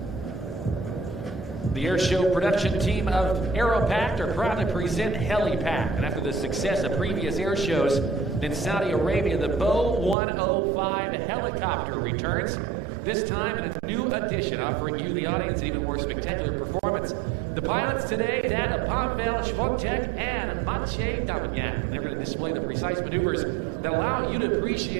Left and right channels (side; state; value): left; drops out; at 10.2 s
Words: present Helipact. And after the success of previous air shows in Saudi Arabia, the BO105 helicopter returns. This time in a new edition, offering you, the audience, an even more spectacular performance. The pilots today, that of Pavel Schwontek and Maciej Dominiak. They're going to display the precise maneuvers that allow you to